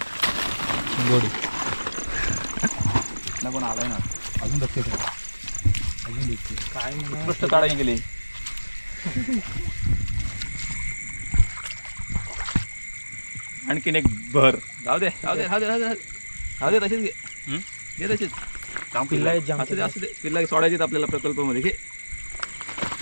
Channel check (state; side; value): inverted; both; correlation -1.00